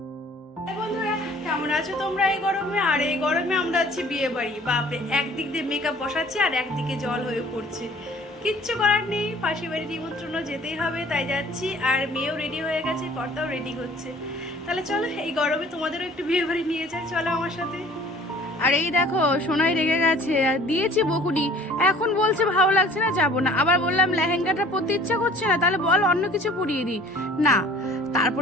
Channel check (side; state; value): both; normal; correlation 0.51